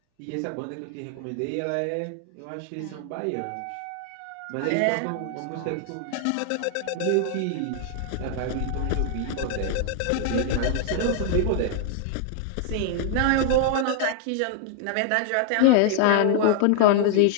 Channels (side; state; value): both; different; correlation 0.00